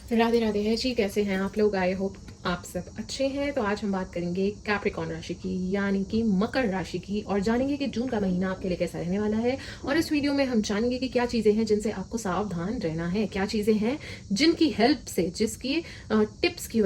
राधे राधे है जी। कैसे हैं आप लोग? आई होप आप सब अच्छे हैं। तो आज हम बात करेंगे कैप्रिकॉर्न राशि की, यानी कि मकर राशि की, और जानेंगे कि जून का महीना आपके लिए कैसा रहने वाला है। और इस वीडियो में हम जानेंगे कि क्या चीज़ें हैं जिनसे आपको सावधान रहना है, क्या चीज़ें हैं जिनकी हेल्प से, जिसकी टिप्स की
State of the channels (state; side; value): identical; both; correlation 1.00